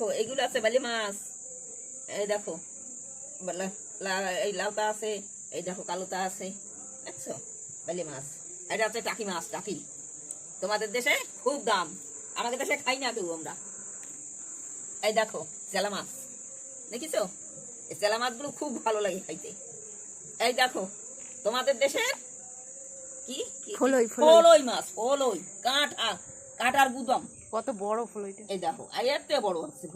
এইগুলো আছে বালি মাছ। এই দেখো, এই লাউটা আছে, এই দেখো কালোটা আছে, দেখছো? বালি মাছ। এটা হচ্ছে টাকি মাছ। টাকি তোমাদের দেশে খুব দাম, আমাদের দেশে খাই না কেউ আমরা। এই দেখো চেলা মাছ, দেখিছো? এই চেলা মাছগুলো খুব ভালো লাগে খাইতে। এই দেখো তোমাদের দেশে কি ফলই ফলই মাছ, ফলই কাঁটা, কাঁটার গুদম। কত বড় ফলইটা! এই দেখো, এর থেকে বড় হচ্ছে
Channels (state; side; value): identical; both; correlation 1.00